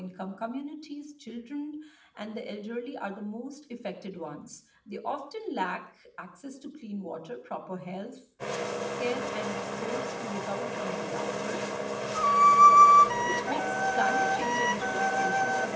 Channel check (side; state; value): both; identical; correlation 1.00